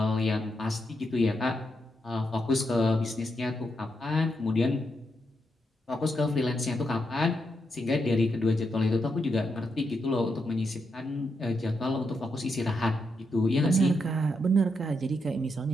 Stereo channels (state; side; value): normal; both; correlation 0.82